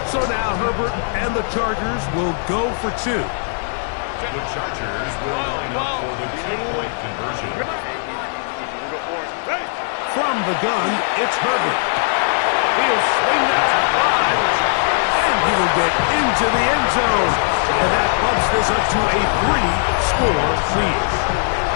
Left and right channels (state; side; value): silent; right; digital silence